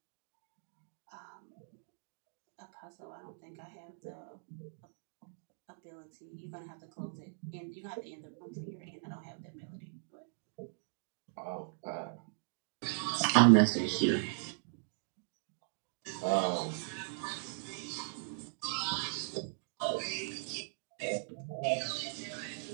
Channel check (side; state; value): left; silent; digital silence